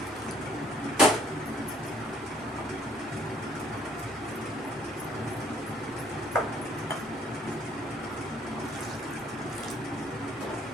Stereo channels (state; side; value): normal; both; correlation 0.62